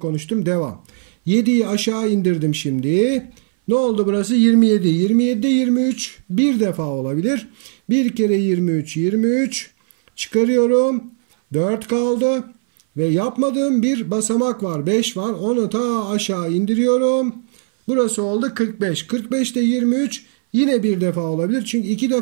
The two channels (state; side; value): silent; left; 60 dB below the other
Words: konuştum. Devam. 7'yi aşağı indirdim şimdi. Ne oldu burası? 27. 27'de 23 bir defa olabilir. 1 kere 23 23. Çıkarıyorum. 4 kaldı. Ve yapmadığım bir basamak var. 5 var. Onu ta aşağı indiriyorum. Burası oldu 45. 45'te 23 yine bir defa olabilir. Çünkü 2